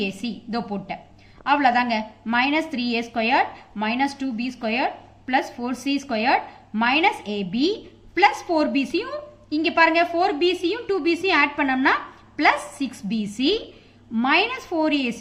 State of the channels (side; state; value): both; identical; correlation 1.00